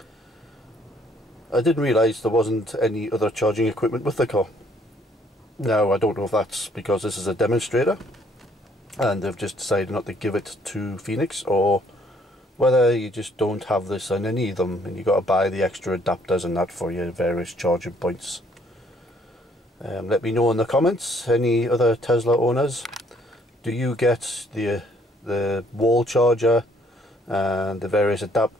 I didn't realise there wasn't any other charging equipment with the car. Now I don't know if that's because this is a demonstrator and they've just decided not to give it to Phoenix, or whether you just don't have this on any of them and you got to buy the extra adapters and that for your various charging points. Let me know in the comments, any other Tesla owners, do you get the wall charger and the various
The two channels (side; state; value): both; normal; correlation 0.64